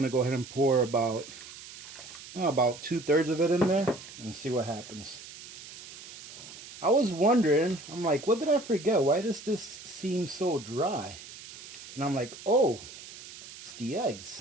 to go ahead and pour about 2/3 of it in there and see what happens. I was wondering, I'm like, what did I forget? Why does this seem so dry? And I'm like, oh, it's the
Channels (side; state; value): right; noise; hiss, 15 dB below the sound